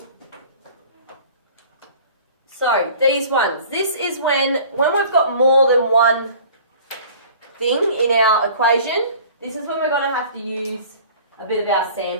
So these ones. This is when we've got more than one thing in our equation. This is when we're going to have to use a bit of our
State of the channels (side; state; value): both; inverted; correlation -0.47